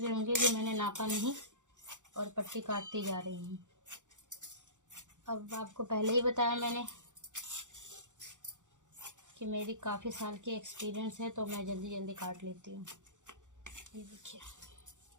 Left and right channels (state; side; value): late; left; 0.85 ms